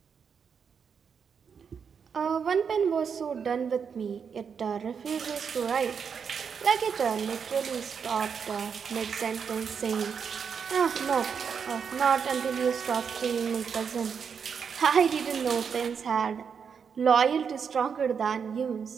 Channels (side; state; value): left; quieter; 6.6 dB